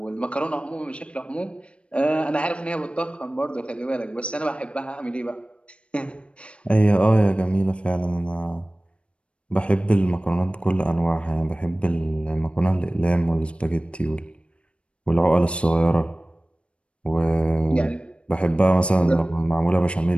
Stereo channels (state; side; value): late; right; 0.059 ms